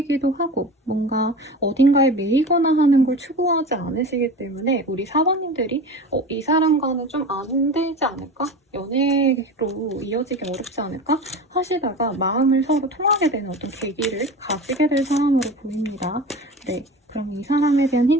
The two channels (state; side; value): normal; both; correlation 0.32